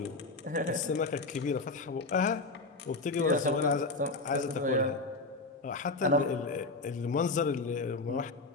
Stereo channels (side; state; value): right; quieter; 3.5 dB